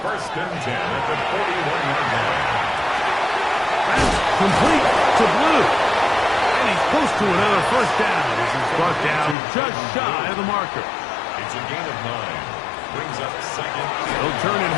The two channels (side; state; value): right; drops out; at 9.3 s